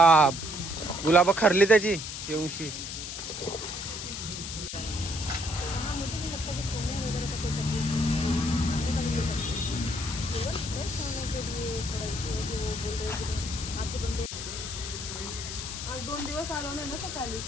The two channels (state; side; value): noise; left; hiss, 7 dB below the sound